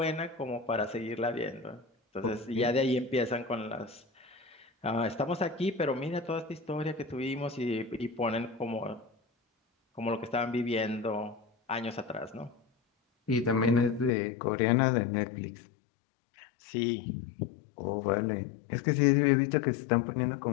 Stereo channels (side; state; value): right; drops out; at 14.1 s